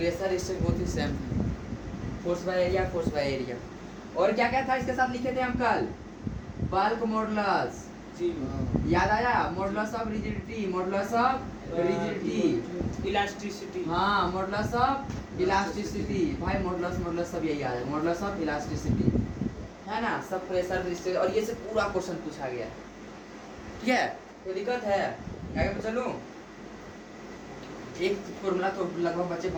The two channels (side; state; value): both; identical; correlation 1.00